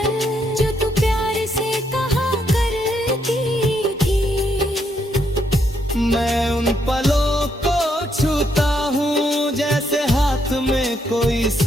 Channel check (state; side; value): normal; both; correlation 0.76